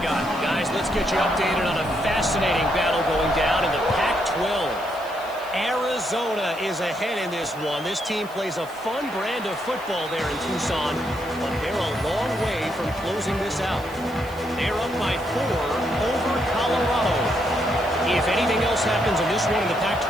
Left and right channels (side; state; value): right; noise; hiss, 22 dB below the sound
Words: Guys, let's get you updated on a fascinating battle going down in the Pac-12. Arizona is ahead in this one. This team plays a fun brand of football there in Tucson, but they're a long way from closing this out. They're up by 4 over Colorado. If anything else happens in this one in the